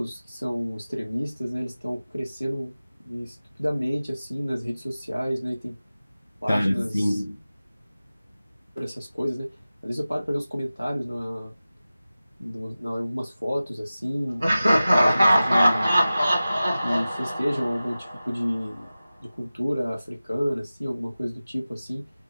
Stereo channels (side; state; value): both; inverted; correlation -0.96